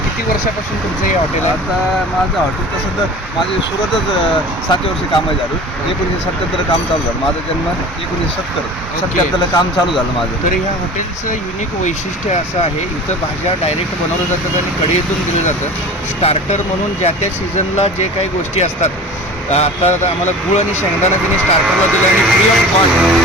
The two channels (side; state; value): both; normal; correlation 0.38